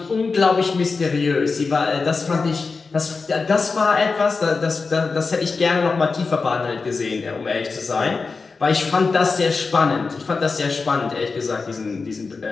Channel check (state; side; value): quieter; right; 4.4 dB